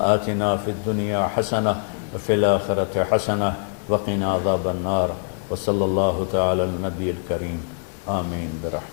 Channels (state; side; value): silent; right; digital silence